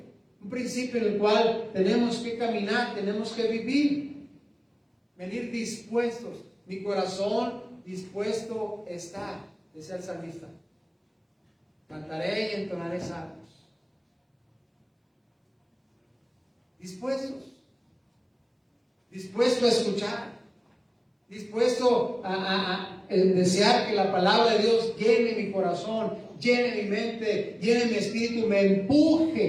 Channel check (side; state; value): both; identical; correlation 1.00